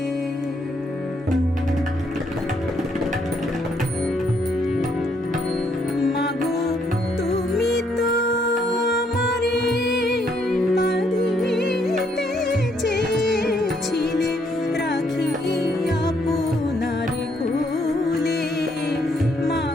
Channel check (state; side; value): normal; both; correlation 0.71